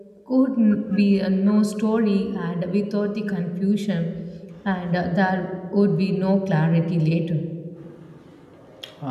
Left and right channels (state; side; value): identical; both; correlation 1.00